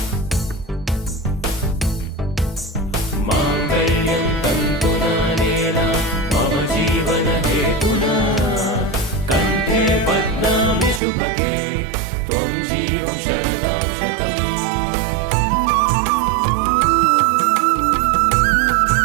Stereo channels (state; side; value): drops out; left; at 11.0 s